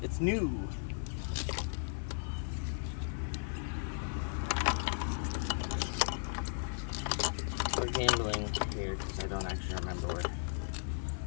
It's new. We're gambling here because I don't actually remember where.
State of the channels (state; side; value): silent; right; digital silence